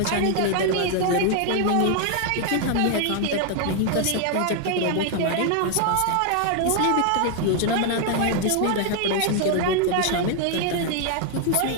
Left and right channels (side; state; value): both; different; correlation 0.00